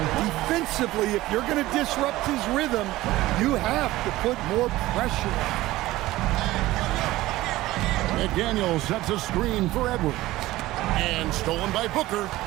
if you're going to disrupt his rhythm, you have to put more pressure on. McDaniel sets a screen for Edwards. And stolen by Booker.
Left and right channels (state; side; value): quieter; left; 17.2 dB